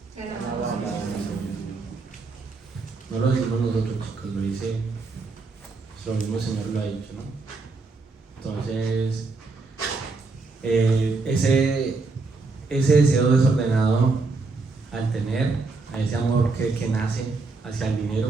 no lo decimos nosotros, chicos, lo dice lo mismo Señor lo ha dicho, ¿no? Entonces, ese deseo desordenado al tener, a ese amor que nace hacia el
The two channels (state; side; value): quieter; left; 3.9 dB